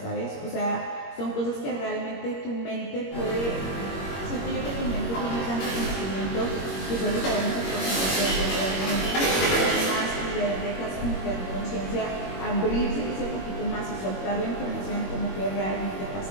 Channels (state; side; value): late; right; 21 ms